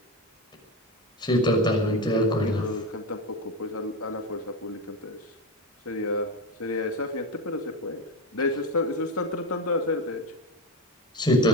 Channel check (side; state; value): both; normal; correlation 0.18